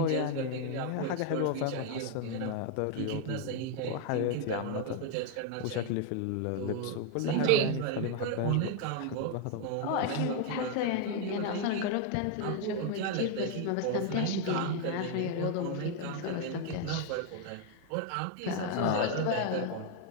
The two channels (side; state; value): both; different; correlation 0.00